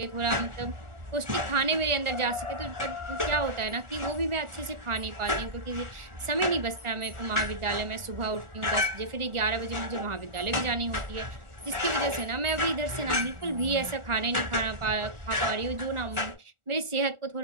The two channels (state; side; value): late; left; 1.4 ms